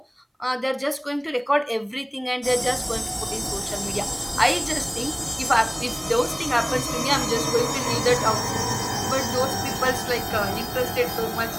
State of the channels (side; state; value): both; identical; correlation 1.00